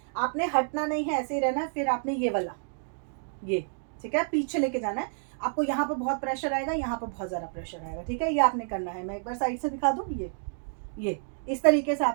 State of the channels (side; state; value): left; silent; digital silence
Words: आपने हटना नहीं है, ऐसे ही रहना है। फिर आपने ये वाला, ये, ठीक है, पीछे लेके जाना है। आपको यहाँ पर बहुत प्रेशर आएगा, यहाँ पर बहुत ज़्यादा प्रेशर आएगा, ठीक है। ये आपने करना है, मैं एक बार साइड से दिखा दूँ, ये इस तरीके से